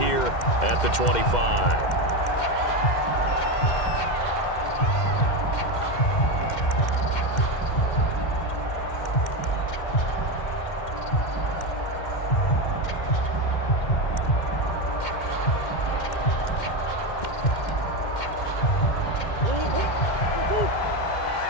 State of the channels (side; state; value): right; late; 2.1 ms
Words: at the 25.